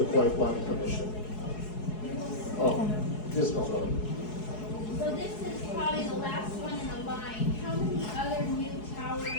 Kaua'i Planning Commission. Yes, Councilor. So this is probably the last one in the line. How many other new towers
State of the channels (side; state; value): right; late; 4.7 ms